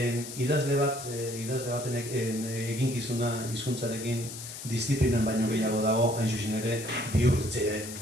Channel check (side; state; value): left; noise; hiss, 10 dB below the sound